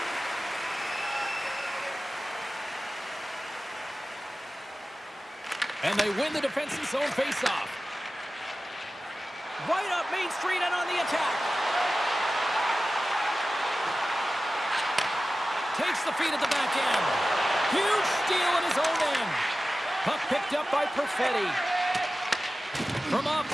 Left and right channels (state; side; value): normal; both; correlation 0.95